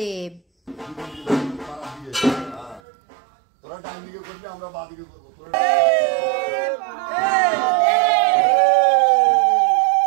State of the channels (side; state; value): left; drops out; at 2.8 s